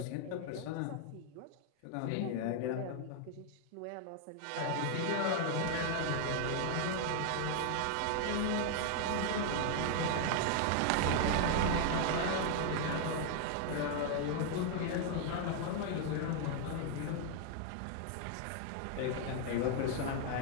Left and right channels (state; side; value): different; both; correlation 0.00